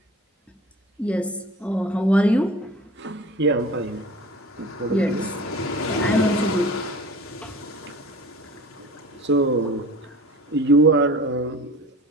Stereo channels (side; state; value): both; normal; correlation 0.40